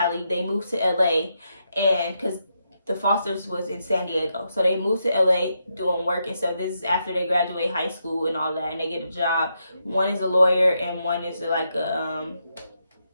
They moved to LA, and because The Fosters was in San Diego, so they moved to LA doing work and stuff. This is after they graduate high school and all that, and they get a job. One is a lawyer, and one is like a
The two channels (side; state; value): both; inverted; correlation -0.82